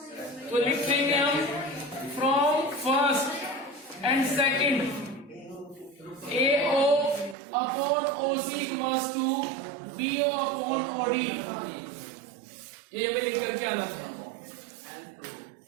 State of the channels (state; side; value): drops out; left; at 7.4 s